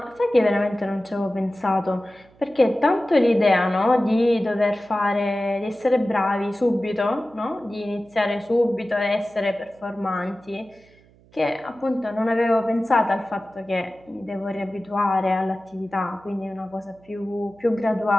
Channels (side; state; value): right; noise; hum, 29 dB below the sound